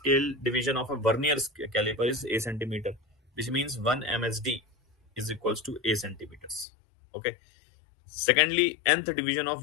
division of a Vernier caliper is A centimeter, which means 1 MSD is equals to A centimeters. Okay. Secondly, nth division of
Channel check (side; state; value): right; drops out; at 6.7 s